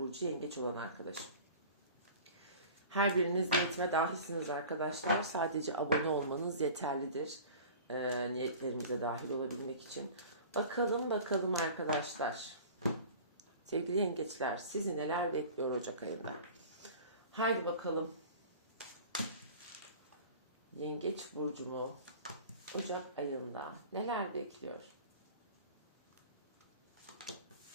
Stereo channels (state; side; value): inverted; both; correlation -0.40